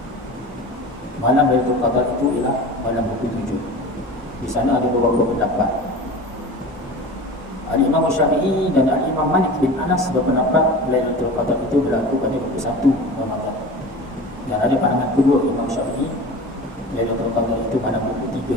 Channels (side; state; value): both; normal; correlation 0.35